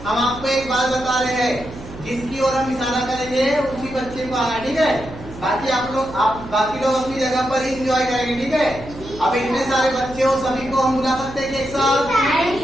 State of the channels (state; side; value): noise; right; hum, 14 dB below the sound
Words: हम आपको एक बात बता रहे हैं, जिसकी ओर हम इशारा करेंगे उसी बच्चे को आना। ठीक है। बाकी बाकी लोग अपनी जगह पर ही एंजॉय करेंगे। ठीक है। अब इतने सारे बच्चे हो, सभी को हम बुला सकते हैं एक साथ,